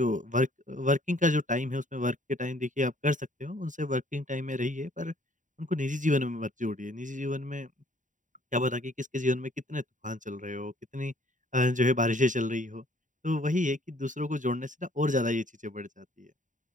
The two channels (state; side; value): late; left; 0.37 ms